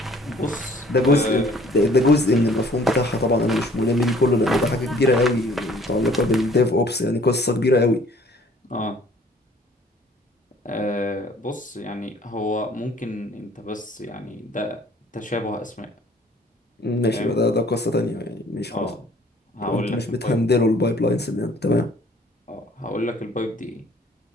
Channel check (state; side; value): normal; both; correlation 0.56